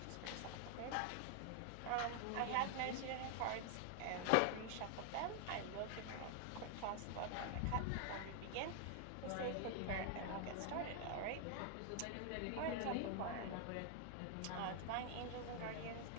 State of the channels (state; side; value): different; both; correlation 0.00